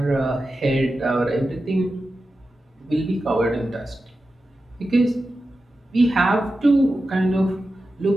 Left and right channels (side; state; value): both; normal; correlation 0.92